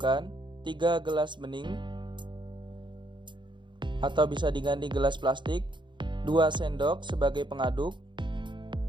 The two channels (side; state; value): left; late; 0.23 ms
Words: 3 gelas bening atau bisa diganti gelas plastik, 2 sendok sebagai pengaduk,